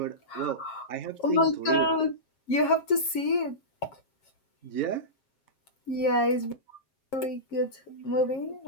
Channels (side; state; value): right; late; 7.4 ms